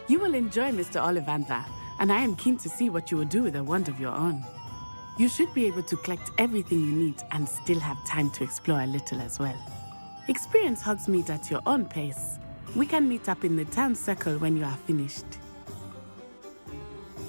You will enjoy Mr. Ollivander, and I am keen to see what you will do with a wand of your own. You should be able to collect everything you need and still have time to explore a little as well. Experience Hogsmeade at your own pace. We can meet up in the town circle when you are finished.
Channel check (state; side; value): inverted; both; correlation -1.00